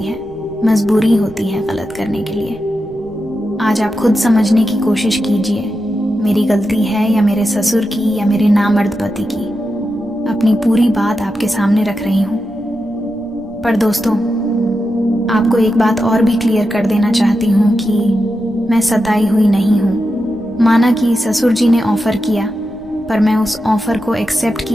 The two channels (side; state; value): right; noise; rumble, 25 dB below the sound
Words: है, मजबूरी होती है गलत करने के लिए। आज आप खुद समझने की कोशिश कीजिए, मेरी गलती है या मेरे ससुर की या मेरे नामर्द पति की। अपनी पूरी बात आपके सामने रख रही हूं। पर दोस्तों, आपको एक बात और भी क्लियर कर देना चाहती हूं कि मैं सताई हुई नहीं हूं। माना कि ससुर जी ने ऑफर किया, पर मैं उस ऑफर को एक्सेप्ट